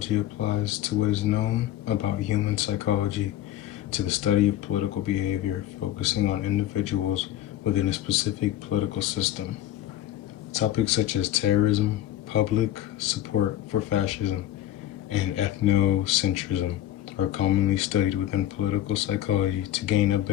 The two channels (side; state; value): right; quieter; 12.7 dB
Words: applies to what is known about human psychology to the study of political behavior, focusing on individuals within a specific political system. Topics such as terrorism, public support for fascism, and ethnocentrism are commonly studied within political psychology to gain a